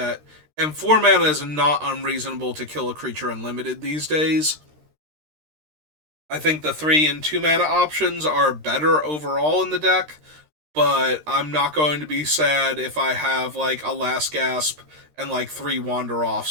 And 4 mana is not unreasonable to kill a creature unlimited these days. I think the 3 and 2 mana options are better overall in the deck, but I'm not going to be sad if I have like a Last Gasp and like 3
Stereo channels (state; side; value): late; left; 13 ms